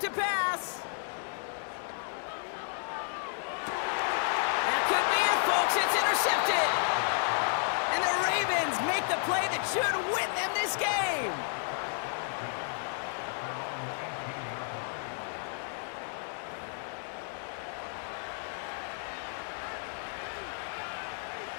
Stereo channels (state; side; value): silent; right; 56 dB below the other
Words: pass. That could be it, folks. It's intercepted. And the Ravens make the play that should win them this game.